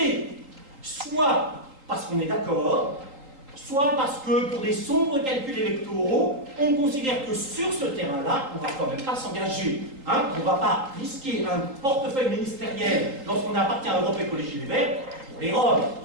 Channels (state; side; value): late; left; 3.8 ms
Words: Soit parce qu'on est d'accord, soit parce que pour des sombres calculs électoraux, on considère que sur ce terrain-là, on ne va quand même pas s'engager. Hein, on ne va pas risquer un portefeuille ministériel lorsqu'on appartient à Europe Écologie Les Verts. Pour les Roms, il ne